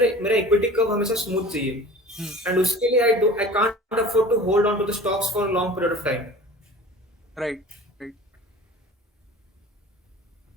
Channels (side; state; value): both; normal; correlation 0.41